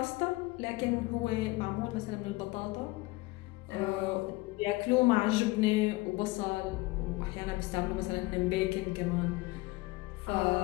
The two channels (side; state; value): right; quieter; 22.0 dB